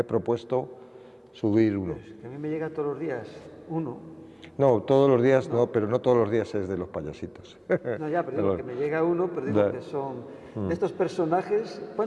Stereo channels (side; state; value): both; identical; correlation 1.00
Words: propuesto subir uno. A mí me llega todos los días uno. No, todos los días no, pero no todos los días es de los payasitos. No, ya, pero digo que me llega uno, pero digo que son... De estos personajes,